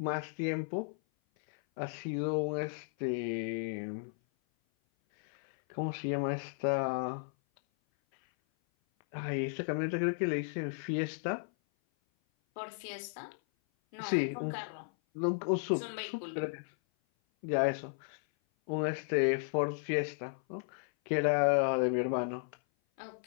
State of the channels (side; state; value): right; silent; 55 dB below the other